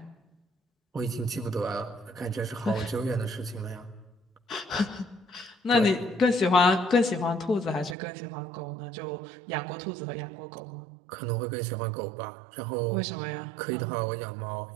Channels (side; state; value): left; drops out; at 8.0 s